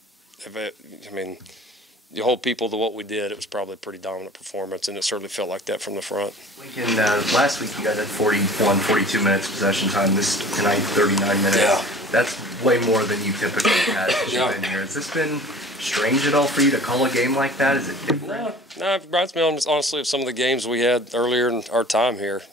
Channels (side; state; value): both; normal; correlation 0.45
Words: you hold people to what we did, it was probably a pretty dominant performance, and it certainly felt like that from the front. Lincoln, last week you guys had 42 minutes possession time. Tonight, 39 minutes. Yeah. That's way more than you typically had since you've been here. Has this been strange at all for you to call a game like that? Is it different? No, it reminds me honestly of some of the games we had earlier in our time here.